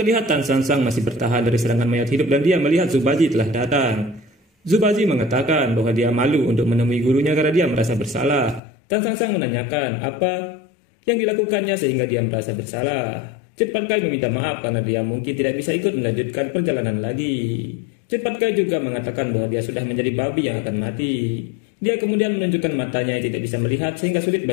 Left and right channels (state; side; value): drops out; right; at 8.6 s